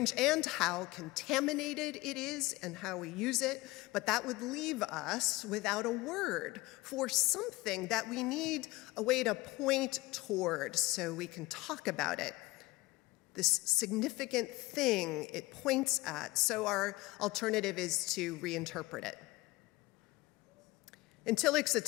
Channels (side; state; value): right; quieter; 20.6 dB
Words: and how contaminated it is and how we use it, but that would leave us without a word for something that we need a way to point toward so we can talk about it, this significant thing it points at. So our alternative is to reinterpret it. In Tillich's